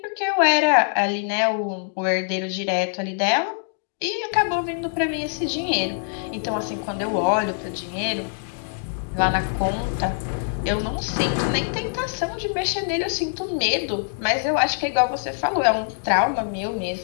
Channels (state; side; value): silent; right; 63 dB below the other